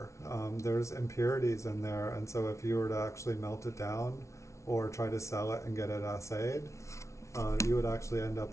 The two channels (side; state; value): right; late; 0.14 ms